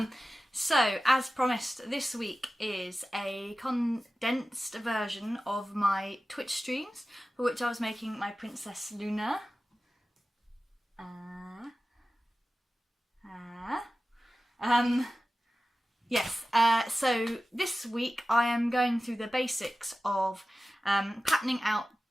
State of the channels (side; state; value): both; normal; correlation 0.95